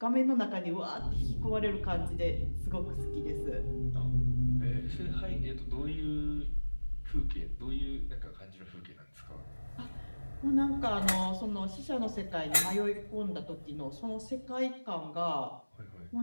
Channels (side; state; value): both; inverted; correlation -1.00